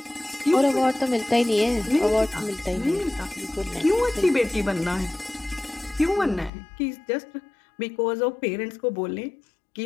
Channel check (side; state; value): right; drops out; at 6.5 s